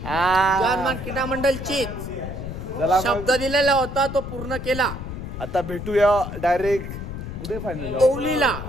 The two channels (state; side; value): noise; left; rumble, 8 dB below the sound